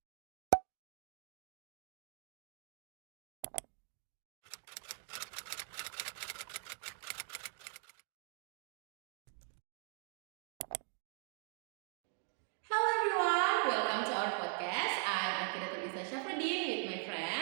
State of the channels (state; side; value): silent; left; 50 dB below the other